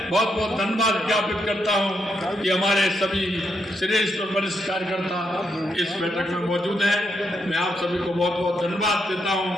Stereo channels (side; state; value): both; normal; correlation 0.79